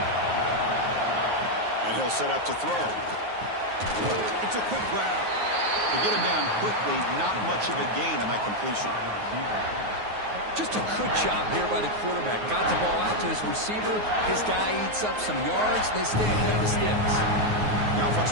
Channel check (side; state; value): left; late; 9.4 ms